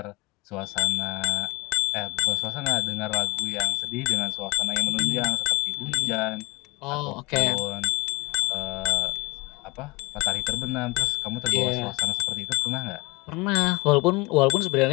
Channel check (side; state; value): right; quieter; 25.3 dB